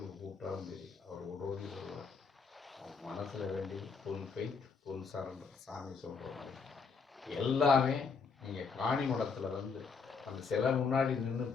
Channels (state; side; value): quieter; right; 5.3 dB